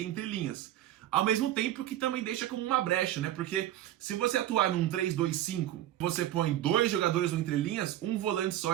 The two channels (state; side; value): quieter; left; 13.0 dB